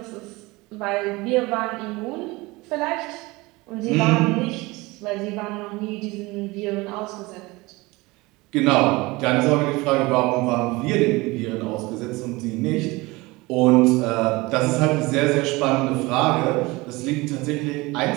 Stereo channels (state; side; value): quieter; left; 22.5 dB